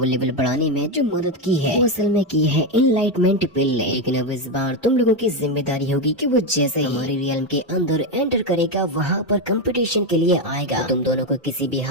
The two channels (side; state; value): both; normal; correlation 0.09